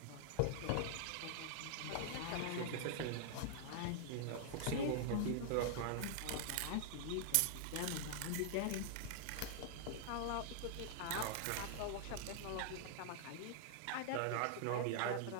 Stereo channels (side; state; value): both; different; correlation -0.01